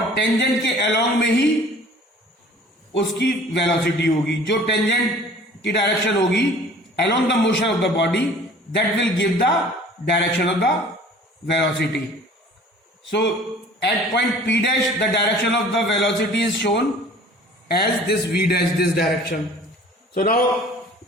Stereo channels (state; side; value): normal; both; correlation 0.48